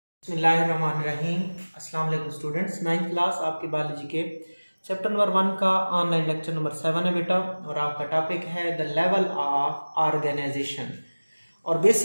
बिस्मिल्लाहिर्रहमानिर्रहीम। अस्सलाम वालेकुम स्टूडेंट्स। 9th क्लास आपके बायोलॉजी के चैप्टर नंबर 1 का ऑनलाइन लेक्चर नंबर 7 है बेटा, और आपका टॉपिक है द लेवल ऑफ ऑर्गेनाइजेशन। और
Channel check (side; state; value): both; inverted; correlation -1.00